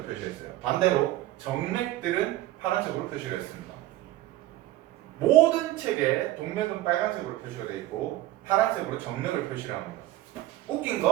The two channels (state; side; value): quieter; left; 15.5 dB